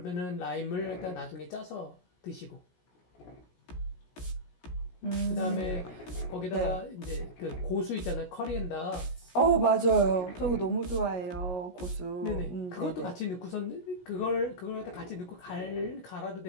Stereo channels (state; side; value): late; right; 17 ms